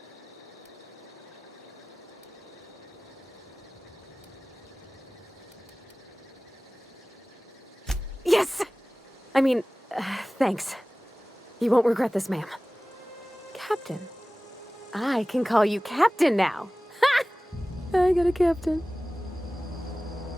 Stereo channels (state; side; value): normal; both; correlation 0.98